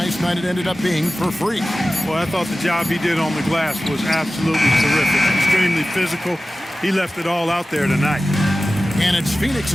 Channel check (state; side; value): normal; both; correlation 0.95